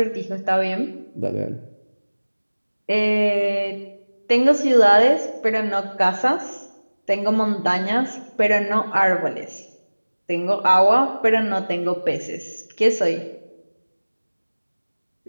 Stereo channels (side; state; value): both; inverted; correlation -1.00